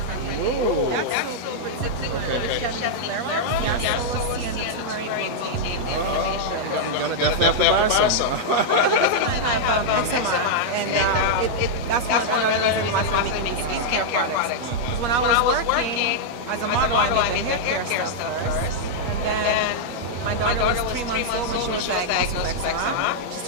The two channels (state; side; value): late; left; 8.4 ms